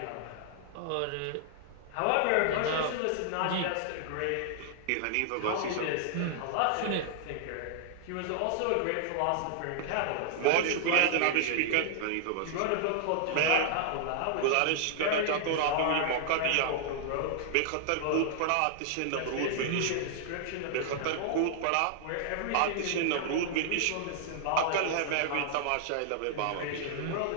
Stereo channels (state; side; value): different; both; correlation -0.01